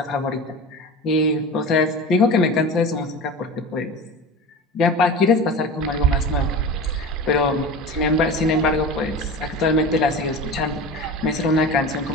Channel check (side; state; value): both; normal; correlation 0.31